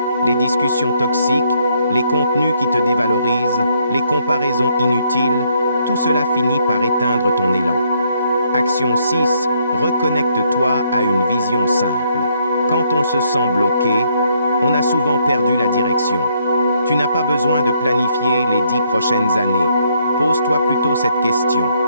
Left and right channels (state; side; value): inverted; both; correlation -0.71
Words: les discussions toxiques, les contenus qui te dévalorisent, les comparaisons inutiles, tout cela finit par éteindre ton élan. Action 6. Reconnecte-toi à une vision simple. Quand on se sent bloqué, on a souvent perdu la direction. Tu n'as pas besoin de planifier les 10 prochaines années. Pose-toi plutôt cette question.